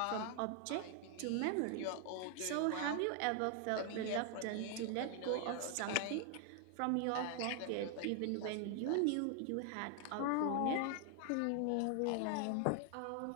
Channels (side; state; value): both; different; correlation 0.00